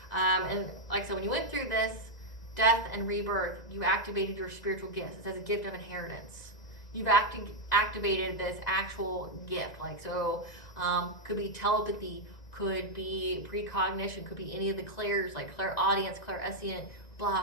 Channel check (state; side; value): late; right; 1.9 ms